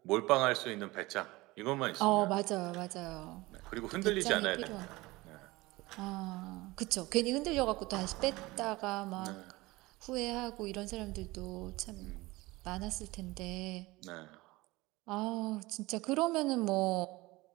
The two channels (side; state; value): left; quieter; 20.9 dB